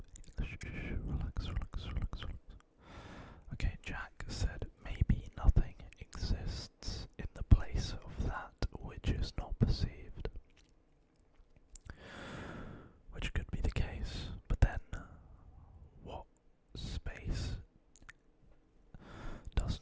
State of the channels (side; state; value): both; identical; correlation 1.00